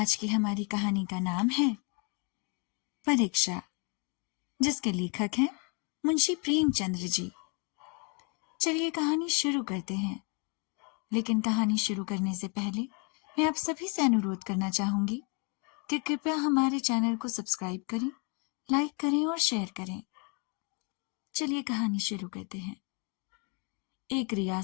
की हमारी कहानी का नाम है परीक्षा, जिसके लेखक हैं मुंशी प्रेमचंद्र जी। चलिए कहानी शुरू करते हैं। लेकिन कहानी शुरू करने से पहले मैं आप सभी से अनुरोध करना चाहूंगी कि कृपया हमारे चैनल को सब्सक्राइब करें, लाइक करें और शेयर करें। चलिए कहानी शुरू करते हैं। एक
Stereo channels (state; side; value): quieter; right; 33.1 dB